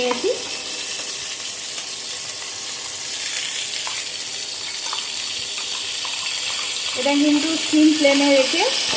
এটা কিন্তু সিম ফ্লেমে রেখে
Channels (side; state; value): both; identical; correlation 1.00